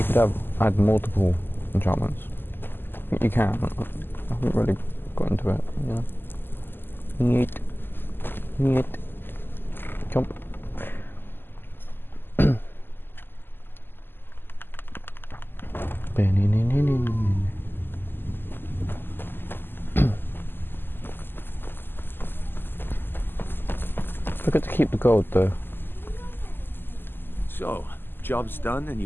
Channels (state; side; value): late; right; 0.097 ms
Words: could add multiple enchantments. I think you can, I haven't really got into it, you know? Neat. Neat. Jump. Forgot to keep the gold though. So, job's done and